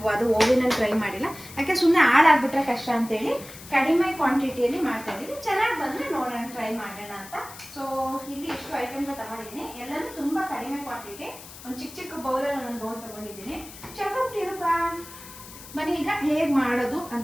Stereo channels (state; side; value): noise; left; hiss, 16 dB below the sound